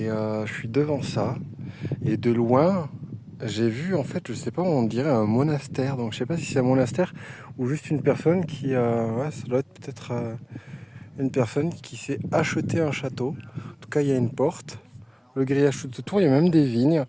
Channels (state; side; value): identical; both; correlation 1.00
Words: je suis devant ça. Et de loin, j'ai vu en fait, je sais pas, on dirait un monastère. Donc je sais pas si c'est un monastère ou juste une personne qui ça doit être peut-être une personne qui s'est acheté un château. En tout cas, il y a une porte. Le grillage tout autour, il y a même des vignes.